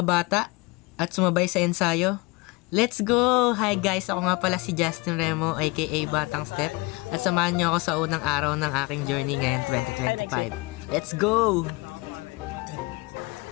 bata at sumabay sa ensayo. Let's go! Hi guys, ako nga pala si Justin Remo aka Batang Step at samahan niyo ako sa unang araw ng aking journey ngayon 2025. Let's go!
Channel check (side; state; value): right; quieter; 25.4 dB